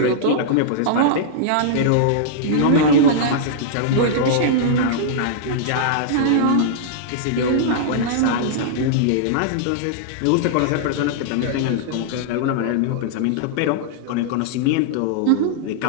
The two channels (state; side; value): different; both; correlation -0.02